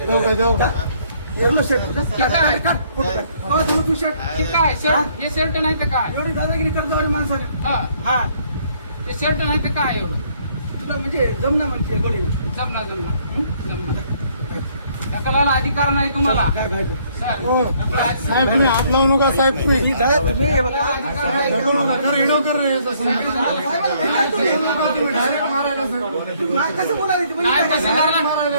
एवढं शर्ट ठीक आहे. धरलो तू शर्ट ठीक आहे शर्ट हे शर्ट नाही तर काय एवढी दादागिरी करतो आणि माणसाला हा हा ते शर्ट नाही तर काय एवढं तुला म्हणजे जमना म्हणते गोडी जमणार ढकलायला अधिकार नाही तुम्हाला काय घ्यायचं सर साहेब तुम्ही हात लावू नका साहेब तुम्ही तुम्ही हे बघा ढकलू नका कर हिडो कर रे याचं समजून. तुम्ही डायरेक्ट मारायला साहेब नाही, कसं बोलायचं तुम्ही? नाही तहसीलदारला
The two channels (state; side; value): inverted; both; correlation -0.65